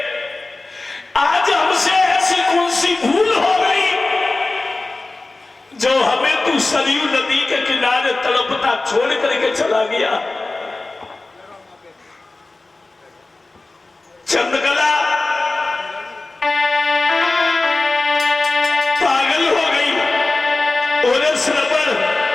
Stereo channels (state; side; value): quieter; right; 3.2 dB